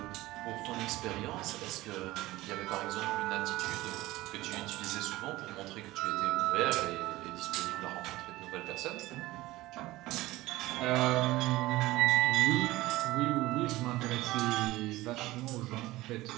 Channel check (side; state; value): left; quieter; 18.2 dB